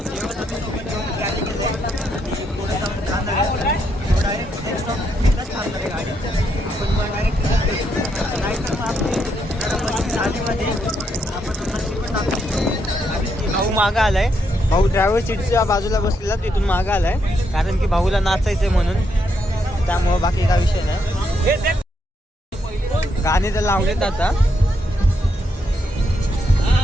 भाऊ मागं आलाय. भाऊ ड्रायव्हर सीटच्या बाजूला बसलेला, तिथून मागं आलाय कारण की भाऊला नाचायचंय म्हणून. त्यामुळं बाकी काय विषय नाही. गाणे तर लावलेत आता.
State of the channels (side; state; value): both; normal; correlation 0.78